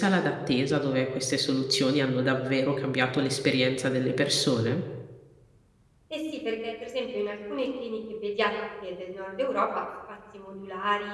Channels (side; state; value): both; identical; correlation 1.00